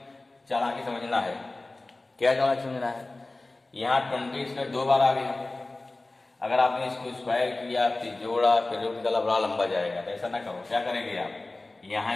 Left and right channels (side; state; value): right; quieter; 3.0 dB